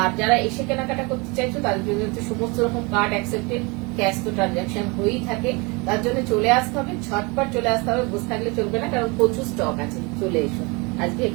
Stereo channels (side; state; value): left; quieter; 28.0 dB